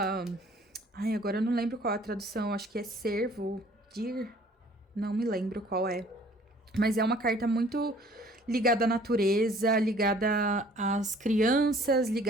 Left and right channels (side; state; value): both; normal; correlation 0.55